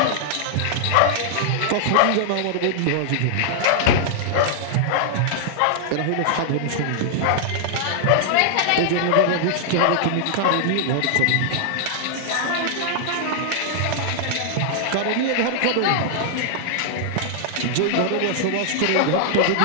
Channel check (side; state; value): both; different; correlation -0.01